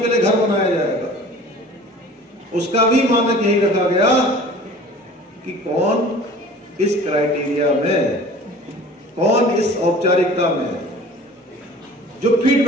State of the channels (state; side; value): normal; both; correlation 0.44